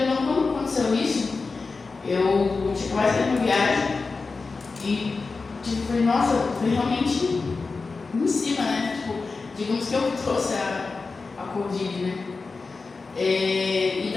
ou não, quando aconteceu isso, eu tinha quase saído uma viagem e falei, nossa, foi realmente em cima, né? Tipo, digamos que eu trouxe a Covid, né? E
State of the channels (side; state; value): right; quieter; 4.2 dB